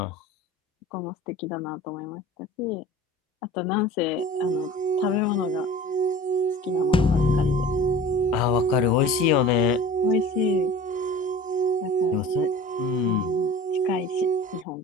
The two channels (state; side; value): normal; both; correlation 0.41